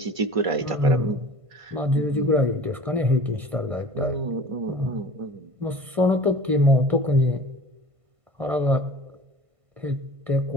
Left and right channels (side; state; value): left; late; 1.5 ms